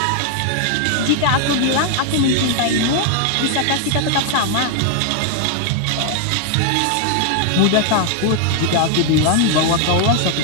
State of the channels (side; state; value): both; different; correlation 0.00